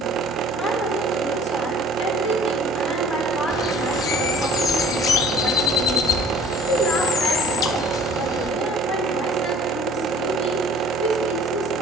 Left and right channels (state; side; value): normal; both; correlation 0.50